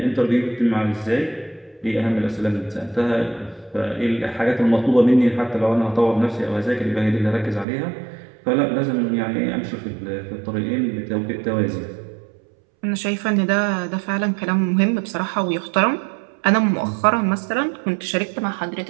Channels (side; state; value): left; drops out; at 7.7 s